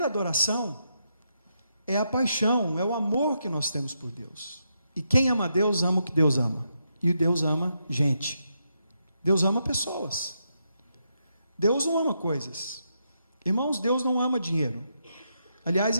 adoração é a paixão, é o amor que nós temos por Deus. E quem ama Deus, ama o que Deus ama. E Deus ama gente. Deus ama pessoas. Deus não ama coisas. Irmãos, Deus não ama dinheiro. Aliás,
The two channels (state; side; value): inverted; both; correlation -0.82